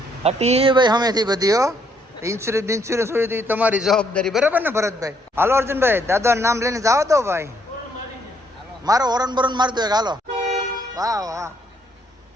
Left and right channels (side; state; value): both; normal; correlation 0.70